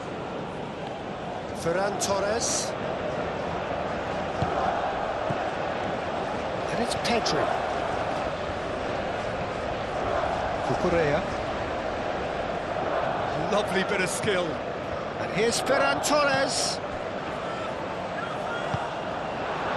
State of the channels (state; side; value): identical; both; correlation 1.00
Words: Ferran Torres. And it's Pedri. Cucurella. Lovely bit of skill. And here's Ferran Torres.